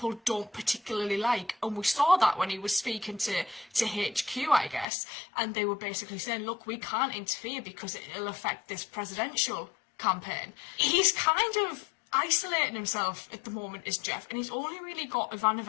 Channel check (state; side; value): drops out; right; at 4.9 s